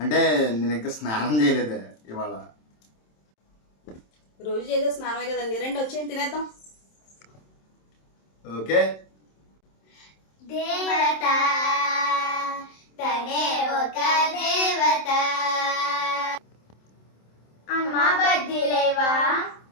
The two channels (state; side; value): late; right; 27 ms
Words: అంటే నేను ఇంకా స్నానం చేయలేదే ఇవాళ. రోజు చేసే స్నానమే కదండి, రండి వచ్చేయండి తినేద్దాం. ఓకే. దేవత తనే ఒక దేవత. అమ్మ బజ్జీలేవా?